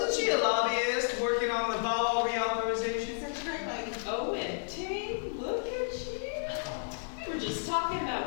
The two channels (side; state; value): right; silent; digital silence